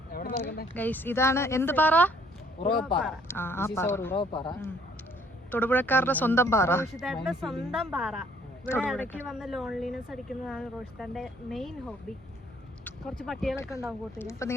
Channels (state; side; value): normal; both; correlation 0.61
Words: ഗൈസ്, ഇതാണ് എന്ത് പാറ? തൊടുപുഴക്കാരുടെ സ്വന്തം പാറ, റോഷിതാന്റെ സ്വന്തം പാറ. ഇവിടെ ഇടയ്ക്ക് വന്ന് ലോൺലിനെസ് അടിക്കുന്നതാണ് റോഷിതാന്റെ മെയിൻ ഹോബി. കുറച്ച് പട്ടികളൊക്കെ ഉണ്ടാവും കൂട്ടില്. അപ്പൊ